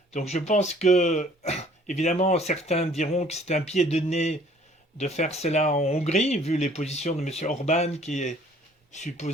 Donc je pense que, évidemment, certains diront que c'est un pied de nez de faire cela en Hongrie, vu les positions de M. Orban, qui est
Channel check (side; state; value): both; normal; correlation 0.56